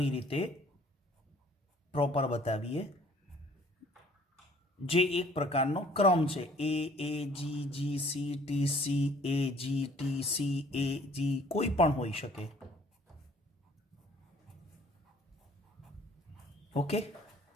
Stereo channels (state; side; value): normal; both; correlation 0.57